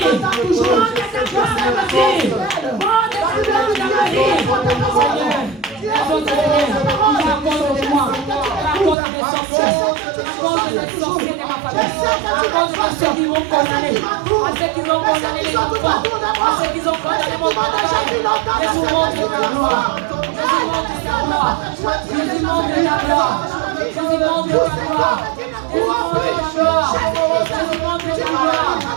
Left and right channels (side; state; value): left; drops out; at 9.0 s